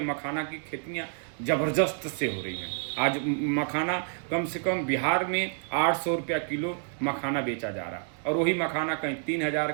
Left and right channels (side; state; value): left; silent; 59 dB below the other